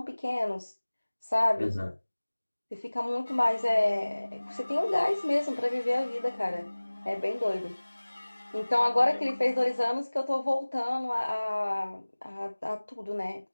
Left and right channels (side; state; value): both; inverted; correlation -1.00